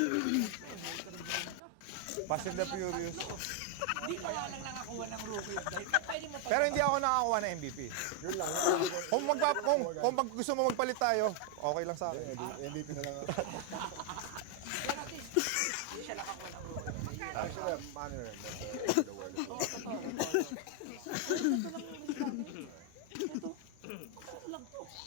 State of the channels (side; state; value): both; different; correlation 0.01